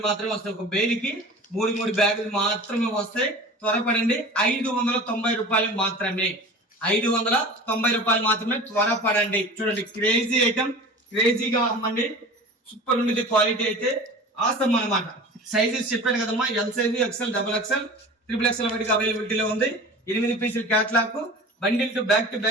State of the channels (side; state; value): both; normal; correlation 0.37